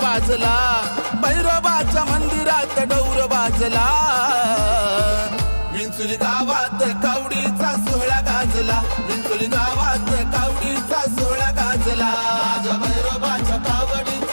वाजला, भैरोबाच्या मंदिरात डौर वाजला। विंचुली गावात कावडीचा सोहळा गाजला, विंचुली गावात कावडीचा सोहळा गाजला। माझ्या भैरोबाच्या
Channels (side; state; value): both; inverted; correlation -1.00